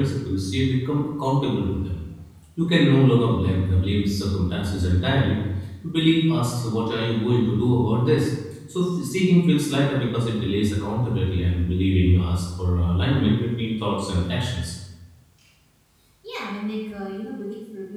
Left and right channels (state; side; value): identical; both; correlation 1.00